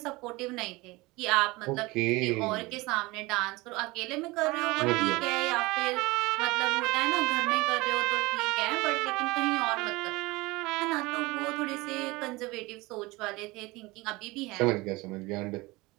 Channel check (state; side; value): quieter; left; 22.4 dB